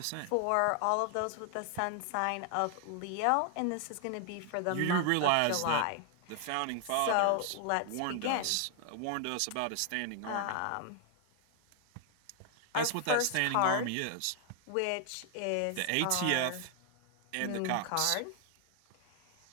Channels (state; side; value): different; both; correlation 0.00